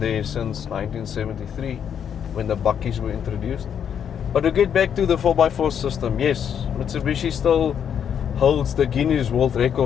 since 1973 when the buckies were introduced. But to get back to the 4x4 system, yes, Mitsubishi still holds the Guinness World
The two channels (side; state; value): right; quieter; 8.3 dB